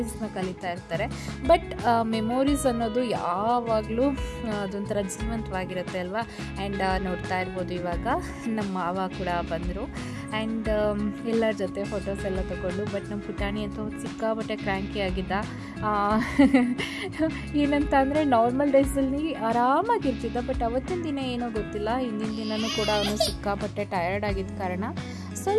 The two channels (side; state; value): both; identical; correlation 1.00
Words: ಕಲಿತಾ ಇರ್ತಾರೆ. ಬಟ್ ಮೆಮೊರೀಸ್ ಅನ್ನೋದು ಯಾವಾಗಲೂ ಅದೊಂಥರ ಜೀವಂತವಾಗಿರುತ್ತೆ ಅಲ್ವಾ. ಆ್ಯಂಡ್ ನೋಡ್ತಾ ಇರ್ಬೋದು ಇವಾಗ ನಮ್ಮ ಮಾವ ಕೂಡ ಬಂದರು ಆ್ಯಂಡ್ ಎಲ್ಲರ ಜೊತೆ ಫೋಟೋಸ್ ಎಲ್ಲ ತೊಗೊಂಡು. ಬಟ್ ನಮ್ಮ ಪುಟಾಣಿ ಅಂತೂ ಸಿಕ್ಕಾಪಟ್ಟೆ ಕ್ರ್ಯಾಂಕಿ ಆಗಿದ್ದ. ಏನಂತ ಅಂದರೆ ನಾರ್ಮಲ್ ಡೇಸಲ್ಲಿ ಆರಾಮಾಗಿರ್ತಿದ್ದ, ಬಟ್ ಅವತ್ತಿನ ದಿನ ಏನೋ ಗೊತ್ತಿಲ್ಲ, ಹಿಂದಿನ ದಿನವೂ ಕೂಡ ಅವನು ಸಿಕ್ಕಾಪಟ್ಟೆ ಟಯರ್ಡ್ ಆಗಿದ್ದ ಕಾರಣ